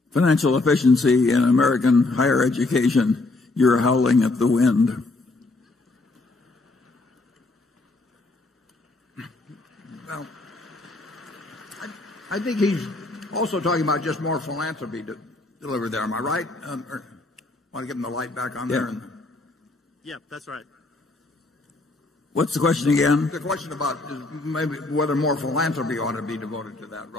financial efficiency in American higher education, you're howling at the wind. Well, I think he's also talking about just more philanthropy delivered there. Am I right? Or want to give him the light back on there? Yeah, that's right. What's the question again? The question about maybe whether more philanthropy ought to be devoted to that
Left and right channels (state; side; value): quieter; right; 3.1 dB